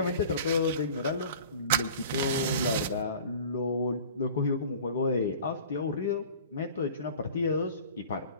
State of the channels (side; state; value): both; inverted; correlation -0.43